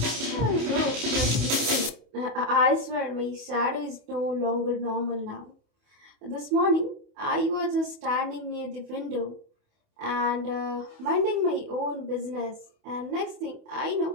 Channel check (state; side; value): late; left; 28 ms